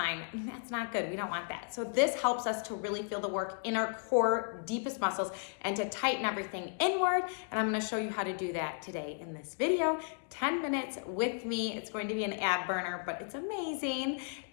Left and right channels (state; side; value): silent; right; 55 dB below the other